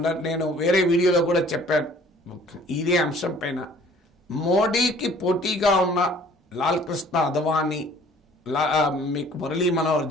నేను వేరే వీడియోలో కూడా చెప్పాను ఇదే అంశం పైన. మోడీకి పోటీగా ఉన్న లాల్ కృష్ణ అద్వానీ, మీకు మురళీ మనోహర్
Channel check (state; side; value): normal; both; correlation 0.54